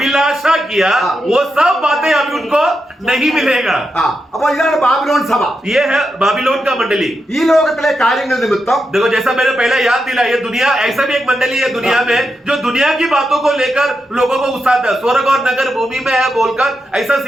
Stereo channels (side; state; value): both; normal; correlation 0.86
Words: किया, वो सब बातें अभी उनको नहीं मिलेगा. അപ്പൊ ഇതാണ് ബാബിലോൺ സഭ. ये है बाबिलोन का मंडली. ഈ ലോകത്തിലെ കാര്യങ്ങൾ നിമിത്തം देखो जैसा मैंने पहले याद दिला, ये दुनिया ऐसा भी एक मंडली है दुनिया में जो दुनिया की बातों को लेकर लोगों को उकसाता है. स्वर्ग और नगर भूमि में है बोलकर ऐसा